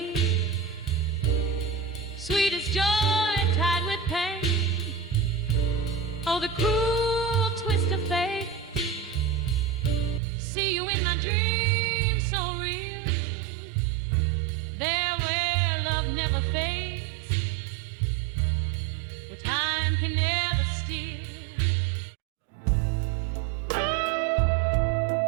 sweet as joy tied with pain. Oh, the cruel twist of fate. See you in my dreams so real, there where love never fades, where time can never steal.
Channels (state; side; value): drops out; left; at 10.2 s